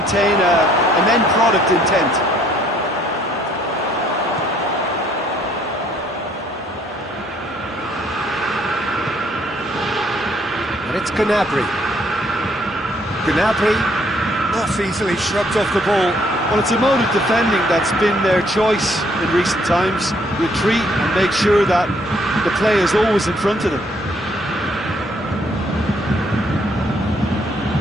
an end product intent. And it's Gnabry. Gnabry, not easily shrugged off the ball. Well, it's a mode of defending that's been their choice in recent times. Retreat and make sure that the play is always in front of them.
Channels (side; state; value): both; normal; correlation 0.66